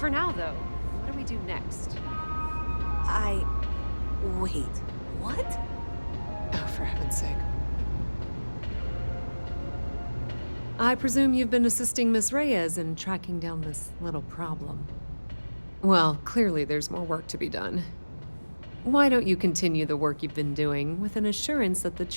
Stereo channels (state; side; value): inverted; both; correlation -1.00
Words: now, though, what do we do next? Wait, what? Oh, for heaven's sake. I presume you've been assisting Miss Reyes in tracking down this little problem. Well, clearly there's more work to be done. Why don't you continue the work you've been doing with an assurance that the